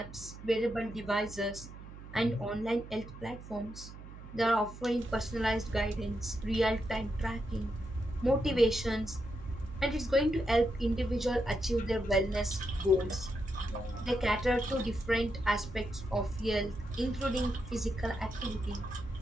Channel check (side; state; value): right; noise; hum, 14 dB below the sound